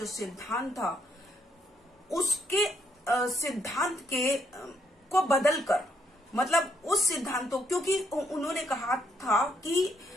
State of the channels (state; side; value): normal; both; correlation 0.74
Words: सिद्धांत था, उसके सिद्धांत के को बदलकर, मतलब उस सिद्धांतों, क्योंकि उन्होंने कहा था कि